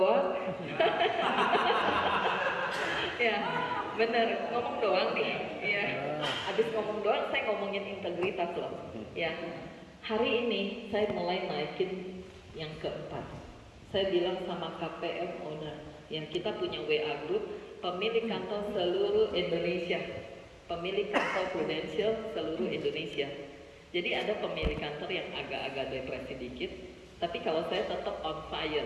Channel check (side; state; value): both; identical; correlation 1.00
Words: Ya, bener, ngomong doang nih. Ya. Habis ngomong doang, saya ngomongin integritas loh. Ya. Hari ini saya mulai naikin yang keempat. Saya bilang sama KPM owner, yang kita punya WA group, pemilik kantor seluruh Indonesia, pemilik kantor Prudential seluruh Indonesia. Jadi ada pemilik kantor yang agak-agak depresi dikit, tapi kalau saya tetap on